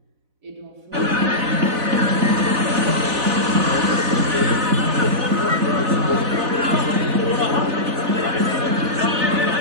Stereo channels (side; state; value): left; late; 4.0 ms